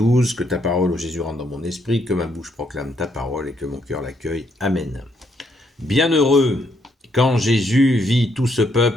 Que ta parole, ô Jésus, rentre dans mon esprit, que ma bouche proclame ta parole et que mon cœur l'accueille. Amen. Bienheureux, quand Jésus vit tout ce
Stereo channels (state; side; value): normal; both; correlation 0.73